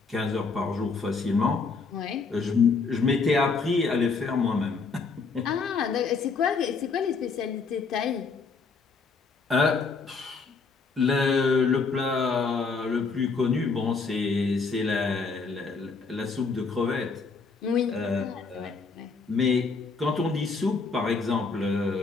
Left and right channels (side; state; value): right; quieter; 4.6 dB